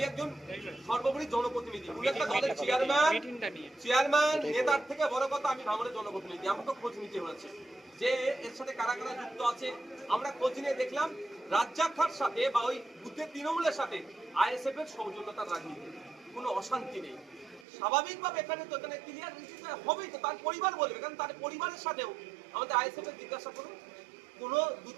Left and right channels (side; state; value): left; drops out; at 17.7 s